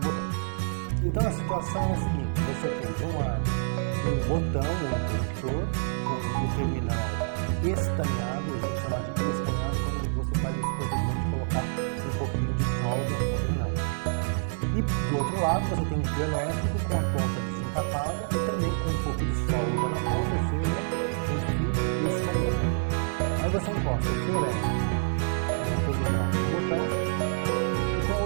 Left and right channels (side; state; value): left; silent; digital silence